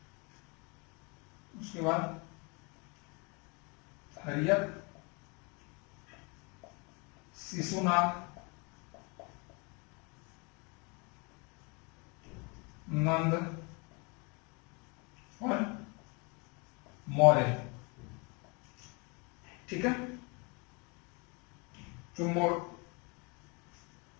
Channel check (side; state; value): right; quieter; 30.8 dB